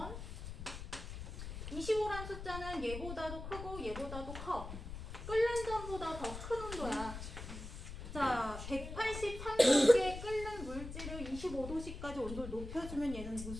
25란 숫자는 얘보다도 크고 얘보다도 커. 끓는 점보다 더 큰 온도야. 자, 183도씨에 끓는 물질을 25도씨까지 온도를 높여주면 얘는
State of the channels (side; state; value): left; noise; rumble, 9 dB below the sound